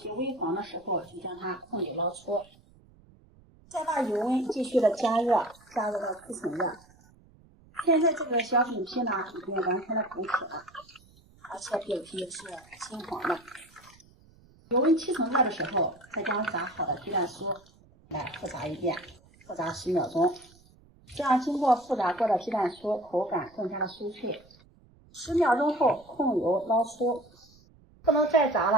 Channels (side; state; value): right; noise; rumble, 28 dB below the sound